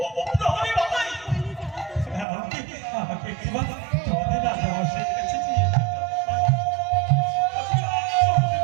ও প্রহরী ভাই, আমাকে একবার তোমাদের রাজামশাইয়ের কাছে নিয়ে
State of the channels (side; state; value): left; drops out; at 2.2 s